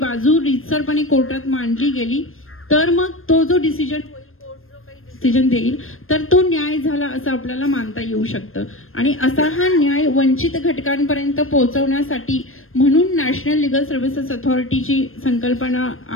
रीतसरपणे कोर्टात मांडली गेली, तर मग तो जो डिसिजन होईल, कोर्ट जो काही डिसिजन देईल, तर तो न्याय झाला असं आपल्याला मानता येऊ शकतं. आणि असा हा न्याय वंचित घटकांपर्यंत पोहोचवण्यासाठी म्हणून नॅशनल लिगल सर्व्हिसेस अथॉरिटीची संकल्पना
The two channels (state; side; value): late; right; 0.60 ms